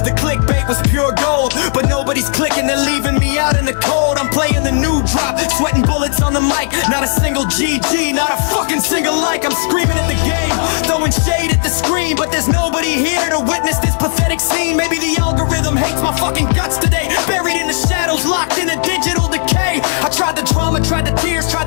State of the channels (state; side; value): silent; right; digital silence